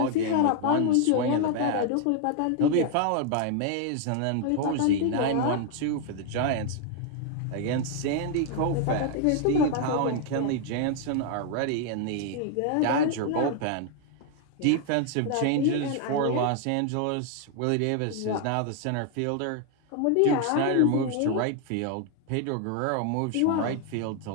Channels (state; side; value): different; both; correlation 0.00